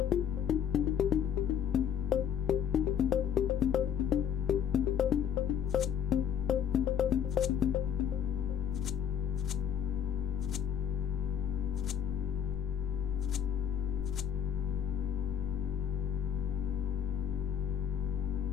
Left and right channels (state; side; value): quieter; right; 8.5 dB